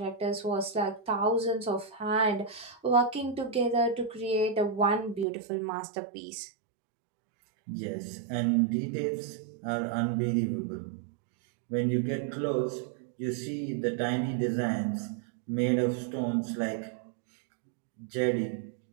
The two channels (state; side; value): drops out; left; at 5.2 s